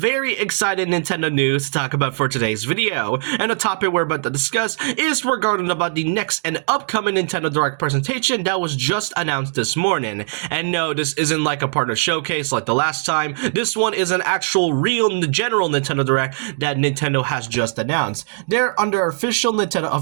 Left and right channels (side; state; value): left; silent; digital silence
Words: exciting Nintendo news to talk about for today's video, and the topic we're about to discuss is regarding about the next and upcoming Nintendo Direct presentation that was just announced this morning. And no, this isn't like a partner showcase like the last time. This one is an actual real general Nintendo Direct that Nintendo has just announced. They're under official Nintendo